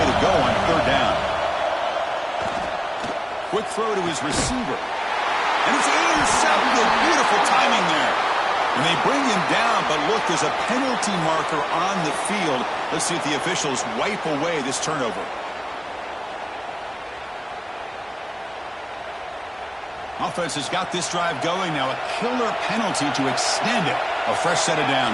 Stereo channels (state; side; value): identical; both; correlation 1.00